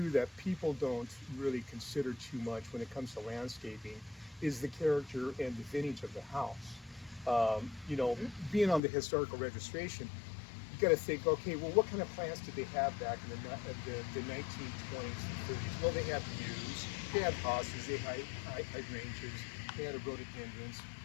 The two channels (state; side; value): drops out; right; at 8.8 s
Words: that people don't really consider too much when it comes to landscaping is the character and the vintage of the house. You know, being on the historical registration, you got to think, okay, well, what kind of plants did they have back in the 1920s and 30s? Well, they had yews, they had hostas, they had hydrangeas, they had rhododendrons,